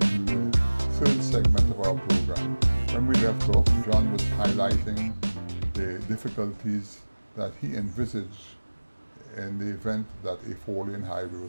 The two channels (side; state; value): both; inverted; correlation -1.00